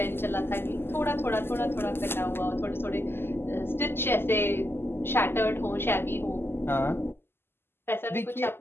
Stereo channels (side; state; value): right; late; 0.11 ms